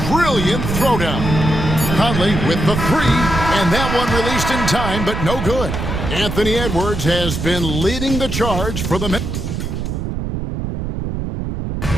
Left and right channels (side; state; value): right; noise; rumble, 4 dB below the sound